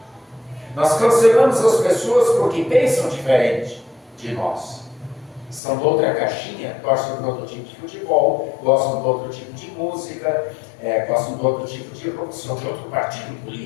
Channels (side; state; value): right; drops out; at 5.6 s